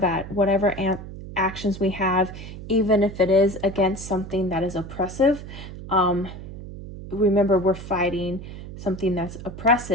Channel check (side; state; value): right; noise; hum, 12 dB below the sound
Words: whatever actions we have, even if it is against something that is oppressive, remember we're fighting something that's